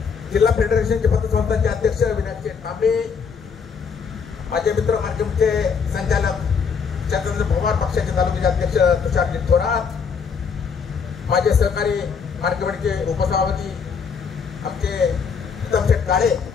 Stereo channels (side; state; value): right; quieter; 6.1 dB